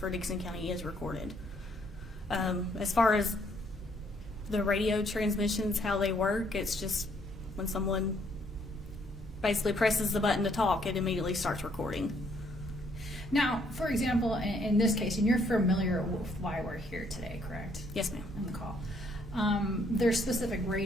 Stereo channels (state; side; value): normal; both; correlation 0.68